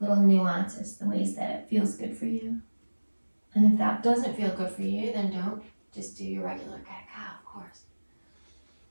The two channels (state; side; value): inverted; both; correlation -1.00